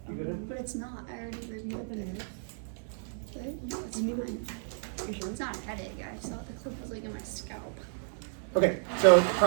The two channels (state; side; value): silent; left; digital silence